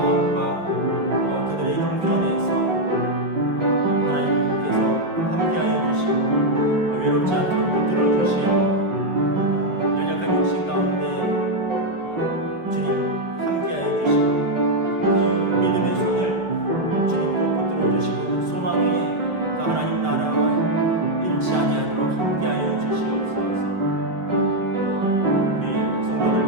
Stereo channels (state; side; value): late; left; 5.0 ms